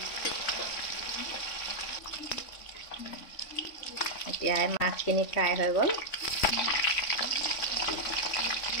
এতিয়া মাছখিনি ফ্ৰাই হৈ গ'ল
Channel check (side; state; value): right; late; 3.5 ms